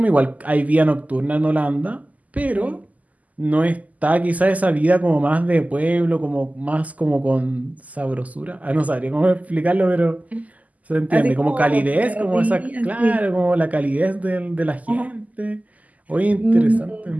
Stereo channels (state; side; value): late; left; 0.076 ms